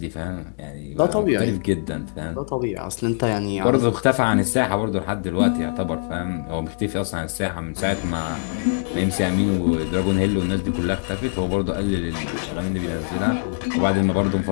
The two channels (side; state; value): right; silent; 61 dB below the other